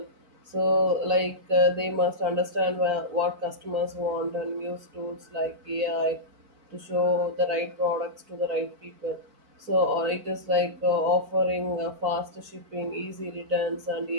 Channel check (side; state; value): left; late; 4.5 ms